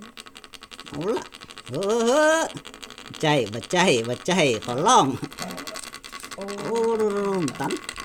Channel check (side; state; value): both; identical; correlation 1.00